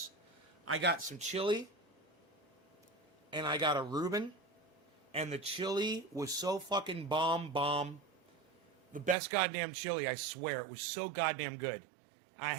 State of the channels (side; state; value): left; drops out; at 9.2 s